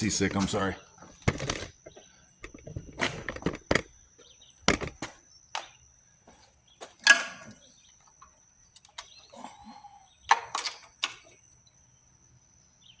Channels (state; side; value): identical; both; correlation 1.00